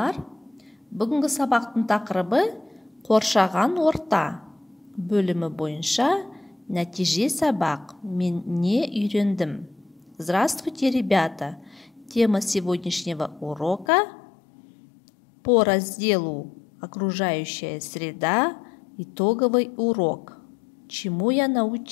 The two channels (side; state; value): right; drops out; at 13.9 s